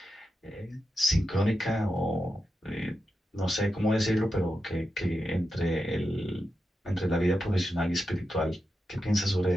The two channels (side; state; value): both; normal; correlation 0.88